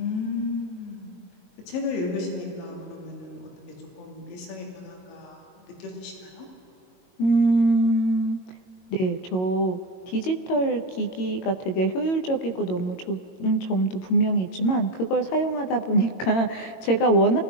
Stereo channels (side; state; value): right; late; 22 ms